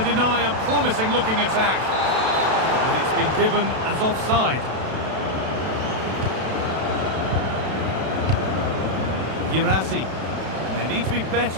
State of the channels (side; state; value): left; late; 32 ms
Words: deny a promising-looking attack. And it's been given as offside. Girassi. They need to be